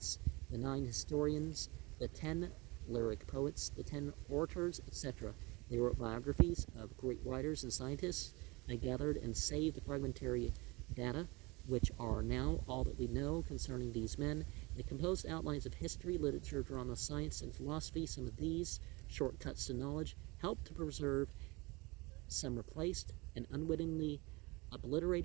the 9 historians, the 10 lyric poets, the 10 orators, etc. They wrote biographies of great writers and scientists. They gathered and saved the fragmentary data, which are now all that we know concerning these men. They composed outlines of history, literature, drama, science, and philosophy. Some of these shortcuts to knowledge helped to preserve, some replaced, and unwittingly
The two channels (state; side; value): quieter; left; 24.8 dB